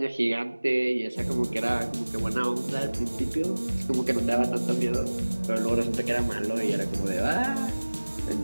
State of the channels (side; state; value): both; inverted; correlation -1.00